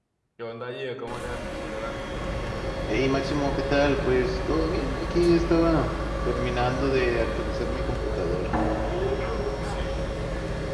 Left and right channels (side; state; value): both; identical; correlation 1.00